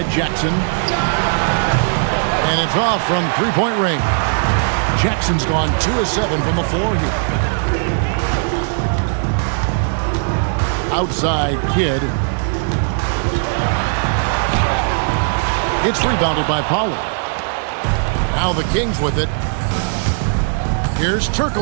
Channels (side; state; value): left; silent; 65 dB below the other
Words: Jackson. And it's off from three-point range. Jackson's gone 2 of 7 from the floor here. Outside Kidd. It's rebounded by Pollard. Now the Kings with it. Here's